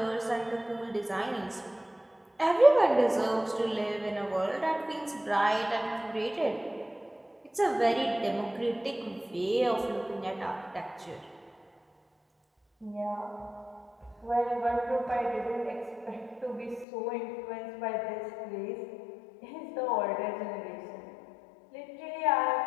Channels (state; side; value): drops out; right; at 16.9 s